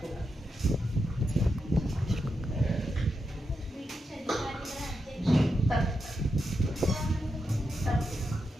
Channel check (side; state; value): both; normal; correlation 0.86